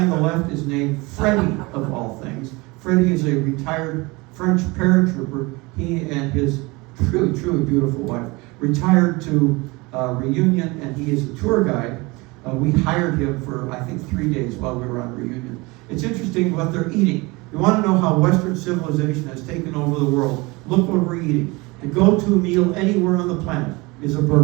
on the left is named Freddie, of all things. Freddie is a retired French paratrooper. He and his truly, truly beautiful wife retired to Reunion, and he is a tour guide. We hired him for, I think, 3 days while we were on Reunion. It's interesting what they're eating. You want to know how Western civilization has taken over the world? Look what we're eating. The go-to meal anywhere on the planet is a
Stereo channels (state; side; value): quieter; left; 24.6 dB